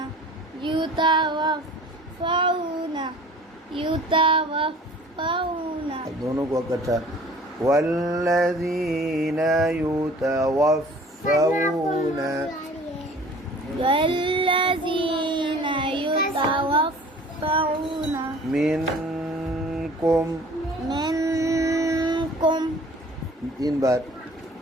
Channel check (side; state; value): both; normal; correlation 0.48